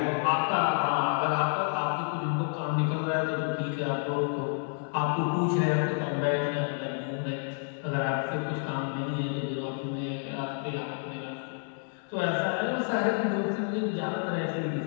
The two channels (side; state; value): right; silent; 58 dB below the other